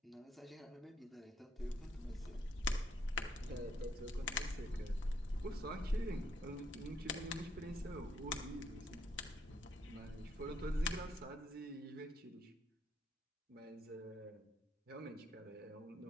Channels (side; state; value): both; normal; correlation 0.74